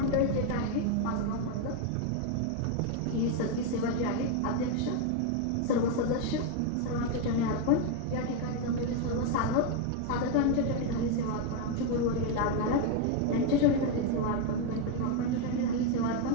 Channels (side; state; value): both; different; correlation 0.01